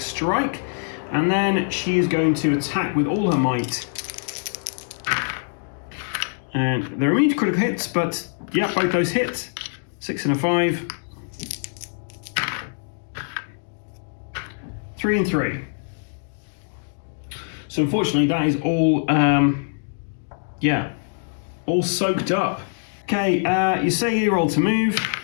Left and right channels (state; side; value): silent; right; digital silence